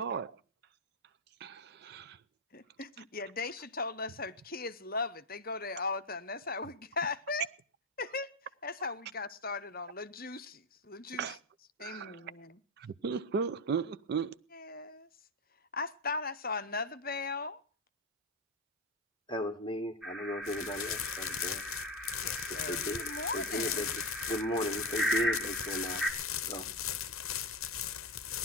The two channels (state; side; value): normal; both; correlation 0.12